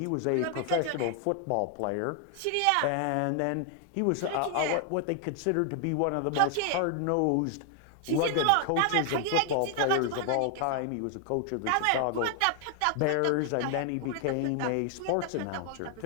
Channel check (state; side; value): different; both; correlation 0.00